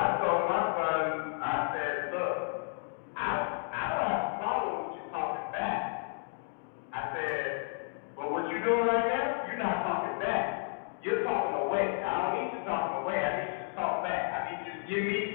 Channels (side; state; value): right; silent; 56 dB below the other